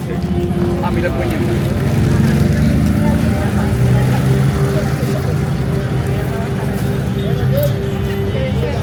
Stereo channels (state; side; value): identical; both; correlation 1.00